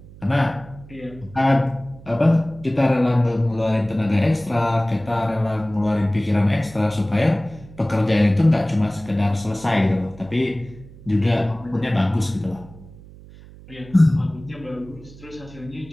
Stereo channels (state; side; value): noise; right; hum, 20 dB below the sound